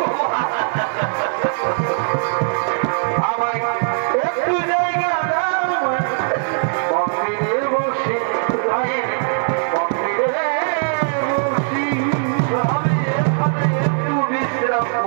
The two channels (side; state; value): left; silent; digital silence